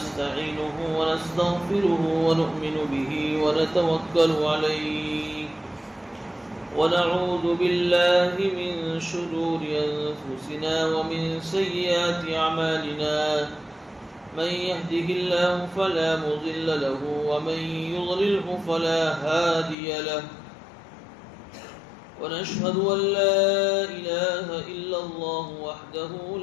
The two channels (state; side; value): drops out; right; at 19.8 s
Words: ونستغفره ونؤمن به ونتوكل عليه ونعوذ بالله من شرور أنفسنا ومن سيئات أعمالنا من يهده الله فلا مضل له ومن يضلله فلا هادي له ونشهد أن لا إله إلا الله وحده